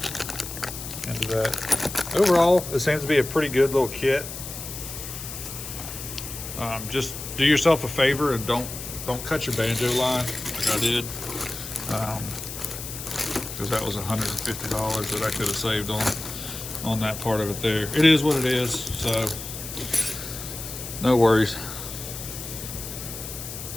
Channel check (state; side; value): noise; left; hiss, 9 dB below the sound